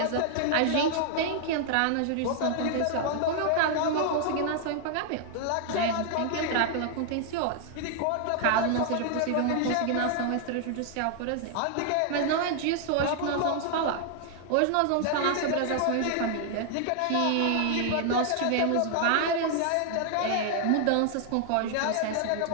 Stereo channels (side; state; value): both; different; correlation 0.00